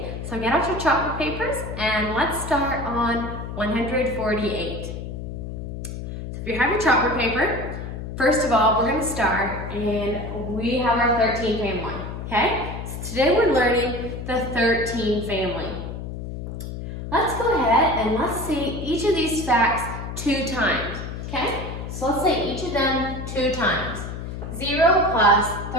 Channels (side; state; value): left; noise; hum, 7 dB below the sound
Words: So get out your chalkboard papers and let's start on 148. So if you have your chalkboard paper, first of all, we're going to start and we have our 13 family, okay? So today we're learning the 13 family. Let's go ahead and let's see each of these facts 2 times, okay? So let's say each of them 2 times. 0 plus